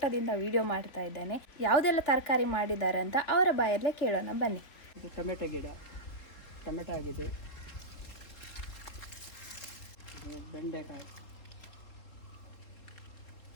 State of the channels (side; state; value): right; late; 3.8 ms